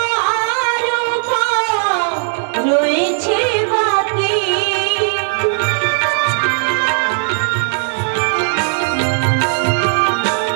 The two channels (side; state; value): left; silent; 58 dB below the other